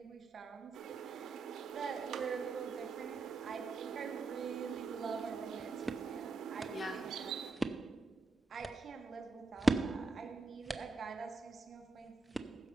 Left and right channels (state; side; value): quieter; left; 3.8 dB